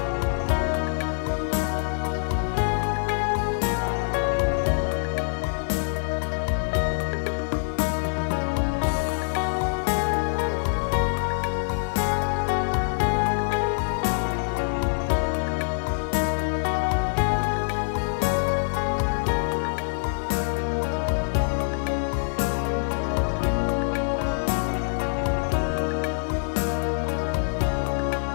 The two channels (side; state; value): right; silent; digital silence